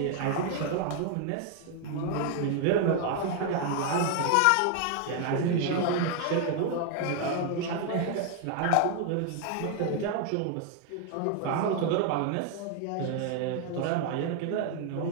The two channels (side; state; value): both; different; correlation 0.00